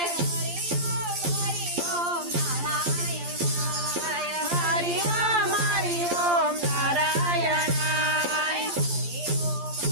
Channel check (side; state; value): left; late; 12 ms